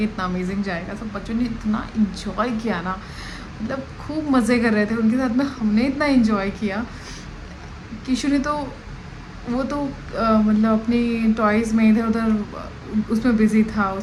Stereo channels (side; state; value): both; identical; correlation 1.00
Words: इतना अमेजिंग जाएगा। सब बच्चों ने इतना इन्जॉय किया ना, मतलब खूब मज़े कर रहे थे उनके साथ में। हमने इतना इन्जॉय किया। किशु ने तो वो तो मतलब अपनी टॉयज़ में इधर उधर उसमें बिज़ी था,